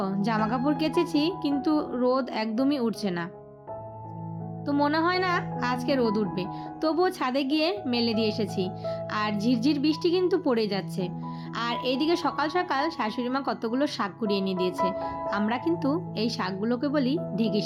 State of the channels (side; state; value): both; identical; correlation 1.00